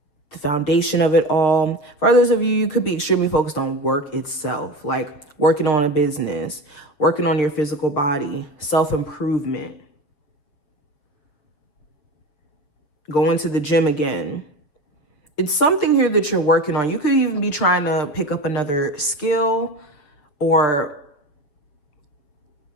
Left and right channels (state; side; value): late; right; 7.0 ms